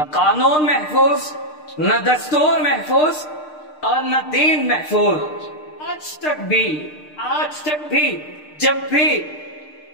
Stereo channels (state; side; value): late; right; 6.6 ms